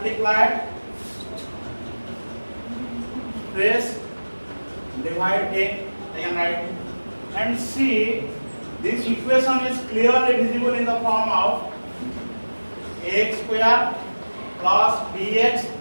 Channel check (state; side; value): inverted; both; correlation -1.00